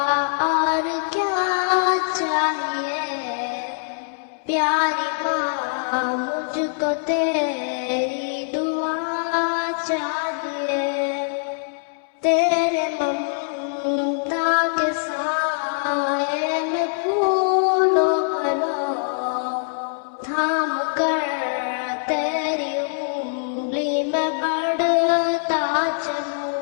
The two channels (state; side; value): silent; right; 63 dB below the other